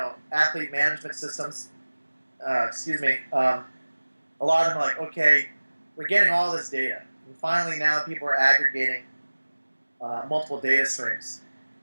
athlete management systems, excuse me, a lot of them are like, okay, we're getting all this data, and finally now people are aggregating multiple data streams,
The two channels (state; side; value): inverted; both; correlation -1.00